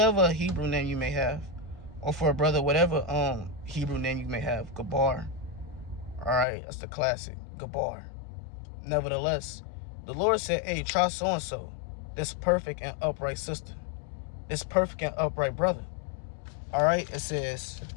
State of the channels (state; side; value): drops out; right; at 6.5 s